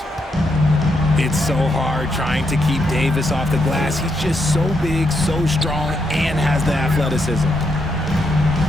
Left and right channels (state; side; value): normal; both; correlation 0.80